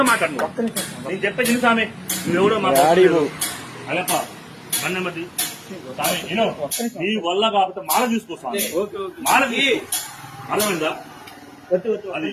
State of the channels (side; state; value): both; identical; correlation 1.00